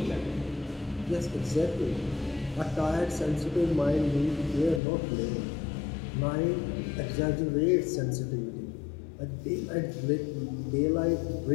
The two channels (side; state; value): right; drops out; at 4.8 s